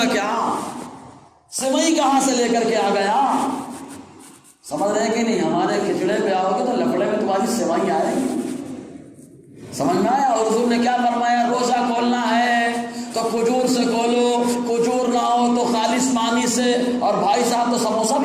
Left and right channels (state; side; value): identical; both; correlation 1.00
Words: کیا؟ سوئی کہاں سے لے کر کے آ گیا؟ سمجھ رہے کہ نہیں؟ ہمارے کھچڑے پہ آؤ گے تو لفڑے میں تمہاری سوئی آئے گی. سمجھ میں آیا؟ اور حضور نے کیا فرمایا؟ روزہ کھولنا ہے تو کھجور سے کھولو، کھجور نہ ہو تو خالص پانی سے. اور بھائی صاحب تو سموسہ